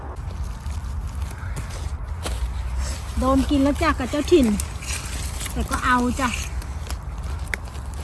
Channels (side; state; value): both; identical; correlation 1.00